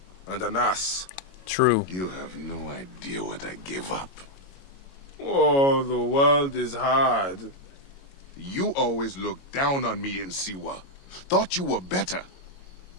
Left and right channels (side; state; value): right; late; 22 ms